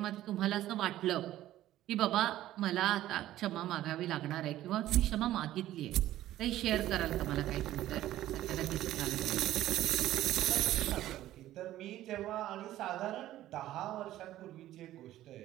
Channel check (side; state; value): left; quieter; 14.0 dB